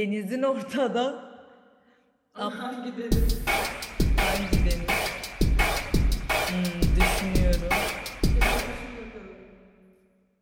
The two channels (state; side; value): identical; both; correlation 1.00